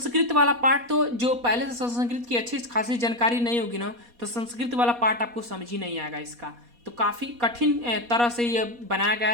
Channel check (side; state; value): left; late; 4.2 ms